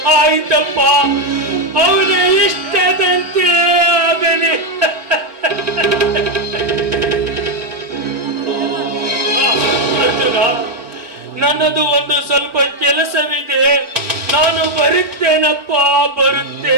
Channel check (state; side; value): late; left; 4.3 ms